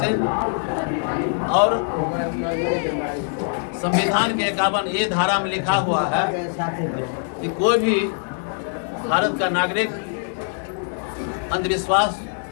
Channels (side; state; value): right; silent; 59 dB below the other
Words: और संविधान के 51A धारा में लिखा हुआ है कि कोई भी भारत का नागरिक अंधविश्वास